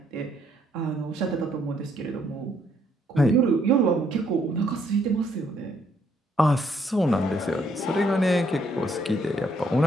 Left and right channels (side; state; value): both; normal; correlation 0.70